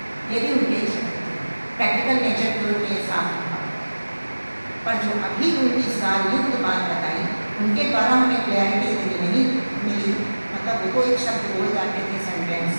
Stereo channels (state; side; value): inverted; both; correlation -1.00